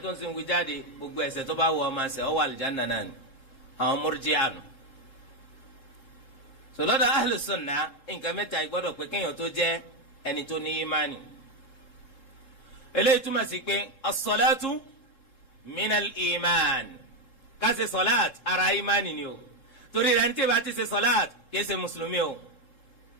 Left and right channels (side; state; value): right; late; 3.7 ms